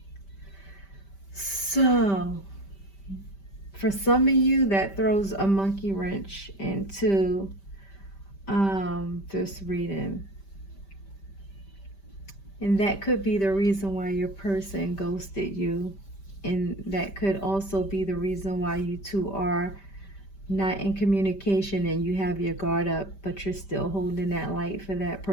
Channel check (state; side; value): late; right; 5.1 ms